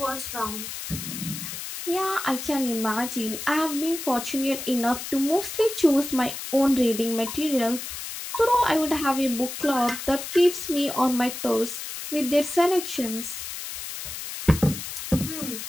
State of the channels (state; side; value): noise; left; hiss, 8 dB below the sound